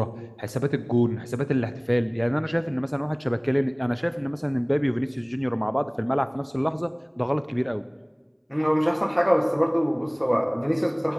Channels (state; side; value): identical; both; correlation 1.00